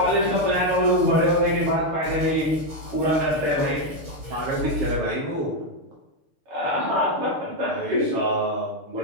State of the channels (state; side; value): late; left; 6.7 ms